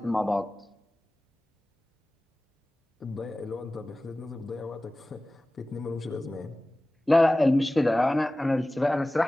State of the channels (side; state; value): both; normal; correlation 0.97